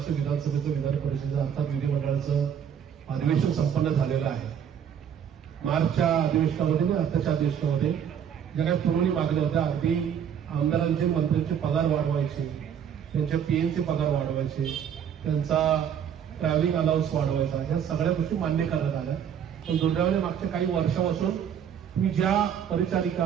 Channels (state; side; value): quieter; left; 8.4 dB